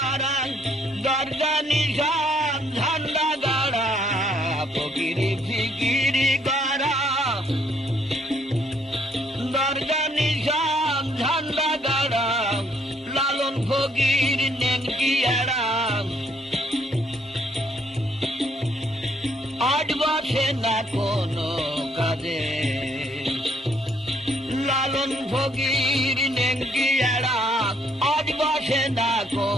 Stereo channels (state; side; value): normal; both; correlation 0.67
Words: দরজা নিশান ঝান্ডা গাড়া। ফকিরি ফিকিরি গড়া, দরজা নিশান ঝান্ডা গাড়া। লালন ফকির নেনকি এড়াম, আট বসে না কোনো কাজে। লালন ফকির নেনকি এড়াম, আট বসে না